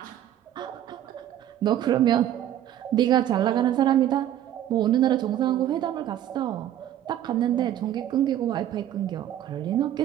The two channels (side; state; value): left; quieter; 11.7 dB